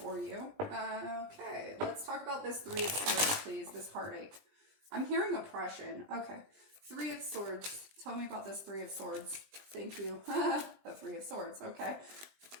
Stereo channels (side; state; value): left; late; 20 ms